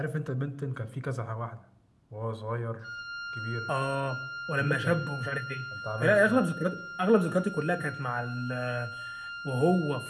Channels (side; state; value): both; identical; correlation 1.00